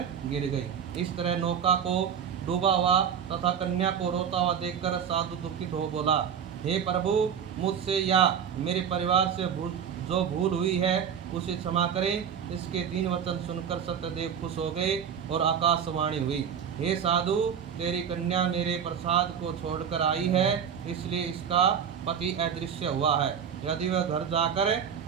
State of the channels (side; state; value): left; quieter; 7.9 dB